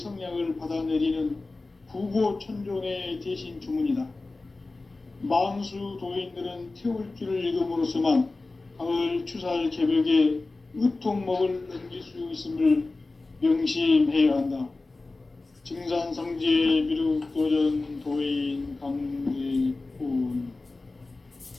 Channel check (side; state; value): right; quieter; 3.4 dB